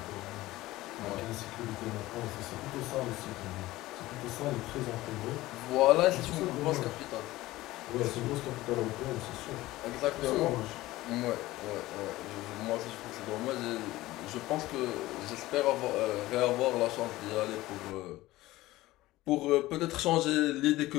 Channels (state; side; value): quieter; right; 17.5 dB